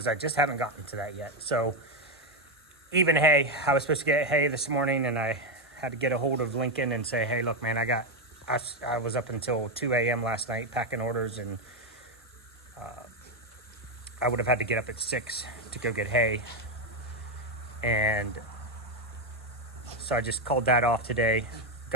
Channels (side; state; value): both; normal; correlation 0.08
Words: I just haven't gotten to that yet. So even hay, I was supposed to get hay this morning, and I had to get a hold of Lincoln and say, hey, look, man, I was up until 2 a.m. last night packing orders, and I would have had to get up at 6 to go get hay. And so I just called that off today,